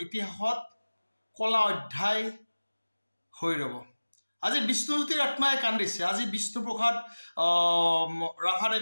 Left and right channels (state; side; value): inverted; both; correlation -1.00